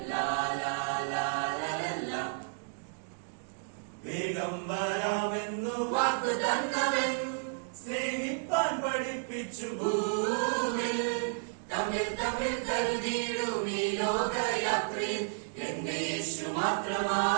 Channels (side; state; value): left; silent; digital silence